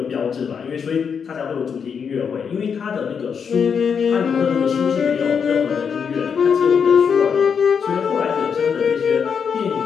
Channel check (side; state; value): right; quieter; 6.7 dB